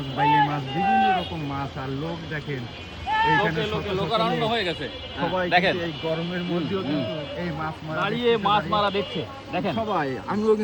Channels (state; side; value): identical; both; correlation 1.00